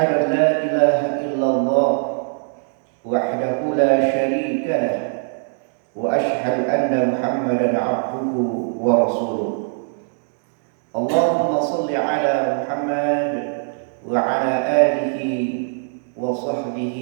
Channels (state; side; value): silent; left; digital silence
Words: an la ilaha illallah wahdahu la syarika lah, wa asyhadu anna Muhammadan 'abduhu wa rasuluh. Allahumma shalli ala Muhammad wa ala alihi wa